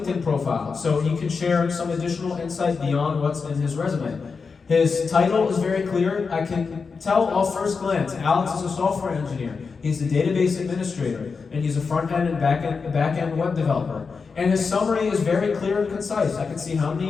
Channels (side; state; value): right; quieter; 5.0 dB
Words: profile, so he can share some additional insight beyond what's in his resume. His title is very clear. I can tell off first glance, Alex is a software engineer. He's a database administrator, and he's a front-end and back-end web developer. And his summary is very clear and concise. I can see how